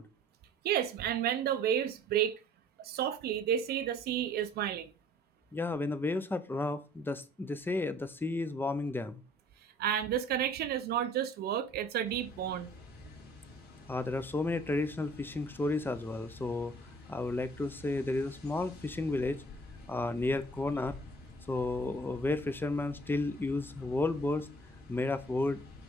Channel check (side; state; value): both; normal; correlation 0.54